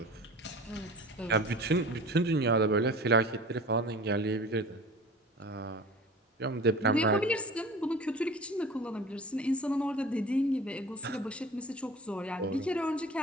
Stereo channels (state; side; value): normal; both; correlation 0.39